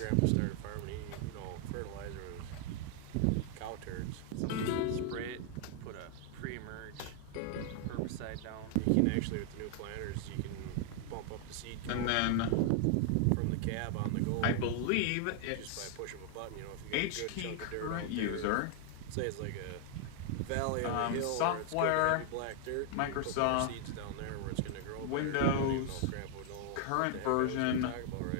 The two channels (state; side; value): different; both; correlation 0.00